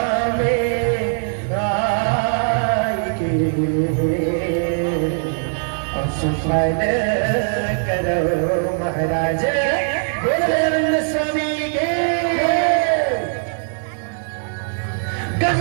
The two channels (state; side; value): silent; left; digital silence